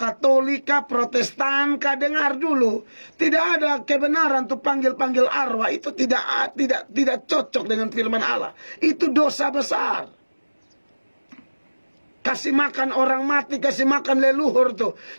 Protestan, dengar dulu. Tidak ada kebenaran untuk panggil-panggil arwah. Itu tidak cocok dengan firman Allah. Itu dosa besar. Kasih makan orang mati, kasih makan leluhur tuh.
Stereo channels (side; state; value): both; inverted; correlation -1.00